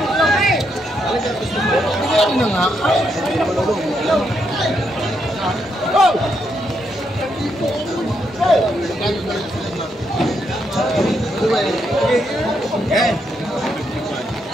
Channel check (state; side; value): normal; both; correlation 0.79